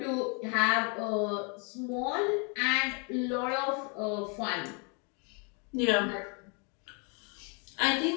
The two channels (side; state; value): right; quieter; 35.5 dB